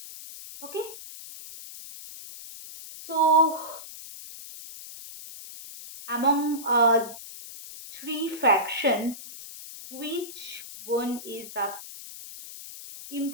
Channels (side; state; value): left; noise; hiss, 13 dB below the sound